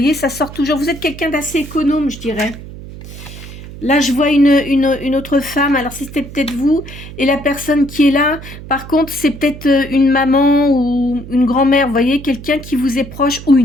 ça sort toujours. Vous êtes quelqu'un d'assez économe, je dirais. Là, je vois une autre femme. Alors, c'était peut-être vous. Et la personne qui est là, par contre, c'est peut-être une maman ou une grand-mère. Vous voyez, quelqu'un qui vous est proche ou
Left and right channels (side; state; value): right; noise; hum, 14 dB below the sound